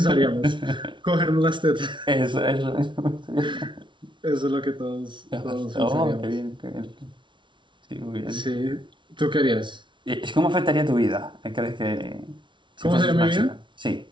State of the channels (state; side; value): late; left; 0.24 ms